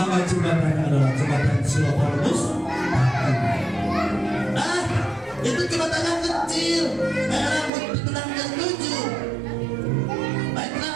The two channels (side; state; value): left; drops out; at 7.7 s